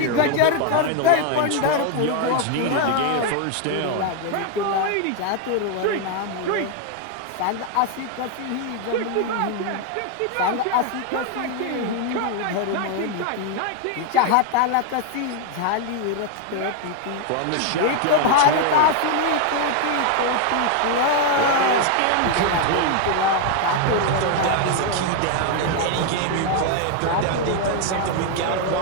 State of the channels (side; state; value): both; different; correlation 0.01